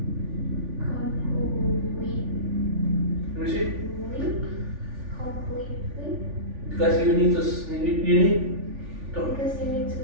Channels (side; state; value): left; late; 3.4 ms